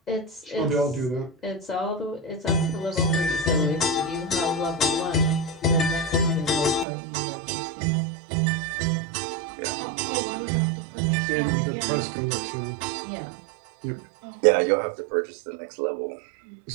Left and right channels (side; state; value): left; drops out; at 6.9 s